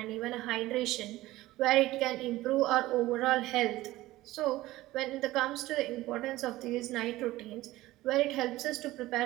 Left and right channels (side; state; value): left; quieter; 17.2 dB